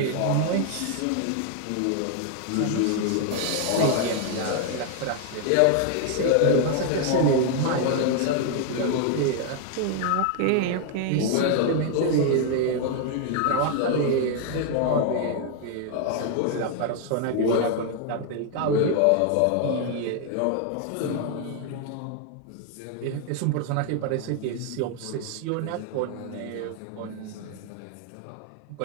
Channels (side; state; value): both; different; correlation 0.00